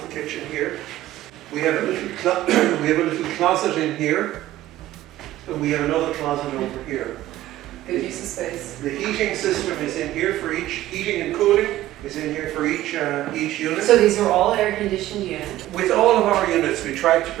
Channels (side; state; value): left; quieter; 14.8 dB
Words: the kitchen here. We have a little closet in here, and we have another closet over here. Good use of space. The heating system is in here for each, heating and cooling is in here for each unit. So these are all air-conditioned units. With all of our units, we tried to